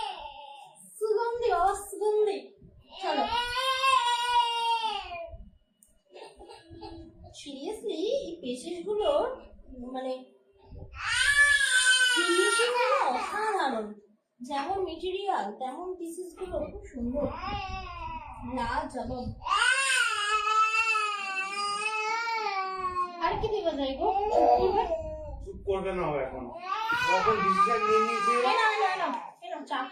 সুগন্ধি অসুগন্ধি। চলো সিরিয়াসলি এই পেশেস গুলোর মানে ফিনিশিং গুলো অসাধারণ, যেমন মেটেরিয়াল তেমন পিসেস গুলো খুব সুন্দর, লাজবাব। আর কি দেওয়া যায় গো? চুপ করবে না ও এখন, এখন ডিসিশন নিয়ে নিয়েছে। চা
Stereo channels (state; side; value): identical; both; correlation 1.00